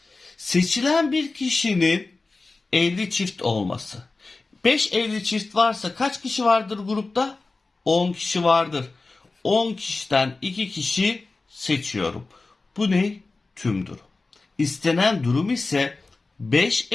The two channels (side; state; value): right; quieter; 3.6 dB